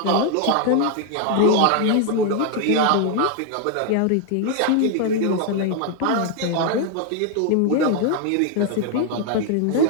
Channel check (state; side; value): different; both; correlation 0.00